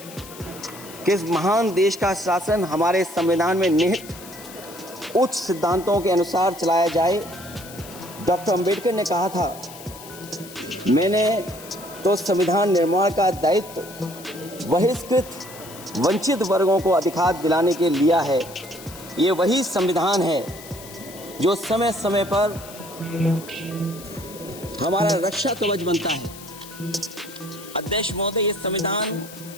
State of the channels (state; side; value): noise; left; hiss, 16 dB below the sound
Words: कि इस महान देश का शासन हमारे संविधान में निहित उच्च सिद्धांतों के अनुसार चलाया जाए। डॉक्टर अंबेडकर ने कहा था, मैंने तो संविधान निर्माण का दायित्व बहिष्कृत वंचित वर्गों को अधिकार दिलाने के लिया है। ये वही संविधान है जो समय समय पर हमारा रक्षा कवच बनता है। अध्यक्ष महोदय, ये संविधान